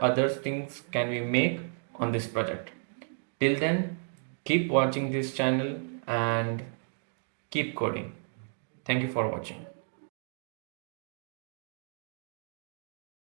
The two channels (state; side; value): silent; left; 56 dB below the other